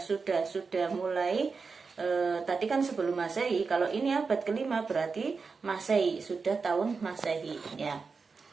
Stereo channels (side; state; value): left; quieter; 4.8 dB